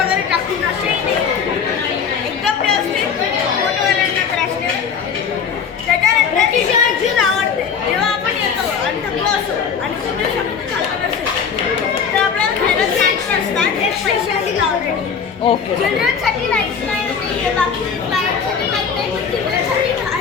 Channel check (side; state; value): right; quieter; 6.6 dB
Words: टाकून असेही नाही एकदम व्यवस्थित फोटोवाल्यांना त्रास त्याच्यानंतर चीज आवडते. जेव्हा आपण येतो आणि थकलो असो आणि तुम्ही शब्द चालत असेल तर आपल्याला खायला स्नॅक्स असतात एक पैशासाठी ऑलरेडी. ओके. चिल्ड्रनसाठी नाहीच नाही बाकी पॅरेंट्ससाठी माहीत नाही पण चिल्ड्रनसाठी